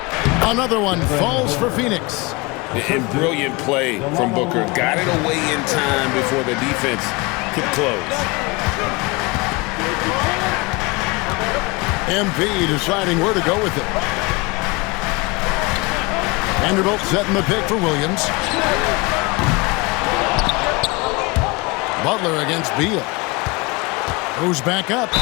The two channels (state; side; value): quieter; right; 25.7 dB